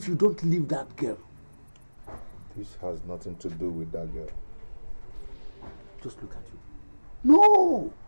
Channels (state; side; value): inverted; both; correlation -1.00